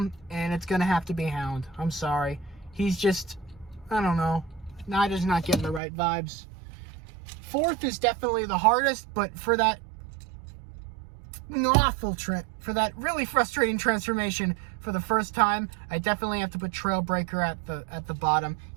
and it's going to have to be Hound. I'm sorry. He's just, I don't know. Just not getting the right vibes. 4th is definitely the hardest, but for that for that really frustrating transformation for the first time, I definitely have to put Trailbreaker at the bottom.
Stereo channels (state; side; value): drops out; left; at 5.8 s